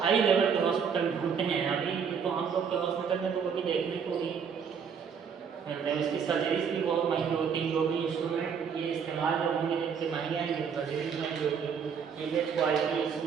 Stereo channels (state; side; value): quieter; left; 6.8 dB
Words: हाई लेवल के हॉस्पिटल ढूंढते हैं। अभी तो हम लोग के हॉस्पिटल में तो कभी देखने को भी मिलता है। उसकी सर्जरीज भी बहुत महंगी होती है, जो भी इंस्ट्रूमेंट ये इस्तेमाल जो होंगे जिनसे महंगे आएंगे, सर्जरीज महंगी होगी। इमेज